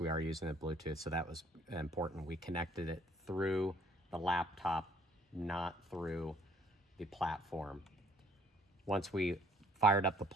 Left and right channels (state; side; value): normal; both; correlation 0.61